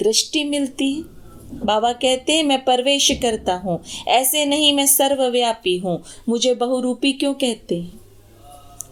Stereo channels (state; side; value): identical; both; correlation 1.00